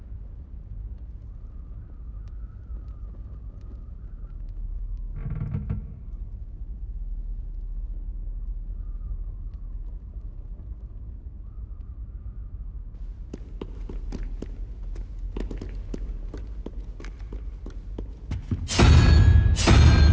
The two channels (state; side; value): identical; both; correlation 1.00